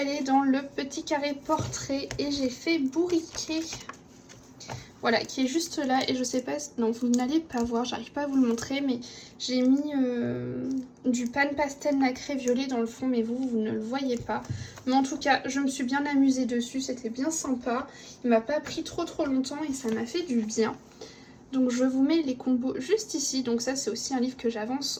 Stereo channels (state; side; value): identical; both; correlation 1.00